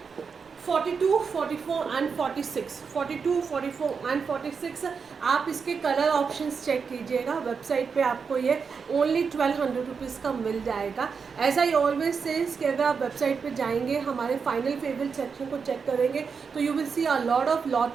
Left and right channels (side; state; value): left; quieter; 5.7 dB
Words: 42, 44 and 46। 42, 44 and 46 आप इसके कलर ऑप्शंस चेक कीजिएगा, website पे आपको ये ओनली 1200 रुपीज़ का मिल जाएगा। एज आई ऑलवेज सेज कि अगर आप वेबसाइट पे जाएंगे, हमारे फाइनल फेवरेट सेक्शन को चेक करेंगे तो you will see a lot of